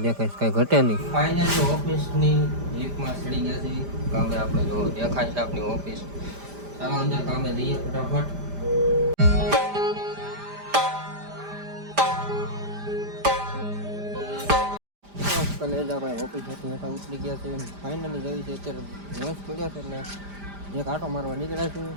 દેખાય, કાંઈ ઘટે નહીં. ફાઇનલી ઓફિસની લીફમાં ચડી ગયા છે કામે. આપણે જો દેખાય છે આપણી ઓફિસ. ચાલો અંદર કામે જઈએ ફટાફટ. કલેજા ભાઈ ઓફિસ હેઠા ઉતરી ગયા છે. ફાઇનલી જવી છે અત્યારે રસ પડ્યો છે એટલે એક આટો મારવા નીકળ્યા છું.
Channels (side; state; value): left; late; 5.0 ms